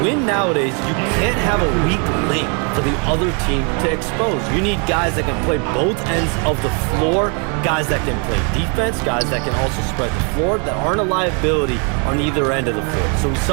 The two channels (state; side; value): quieter; left; 37.0 dB